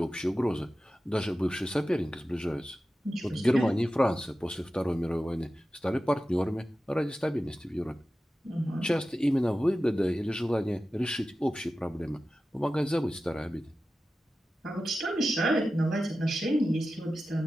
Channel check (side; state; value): both; normal; correlation 0.94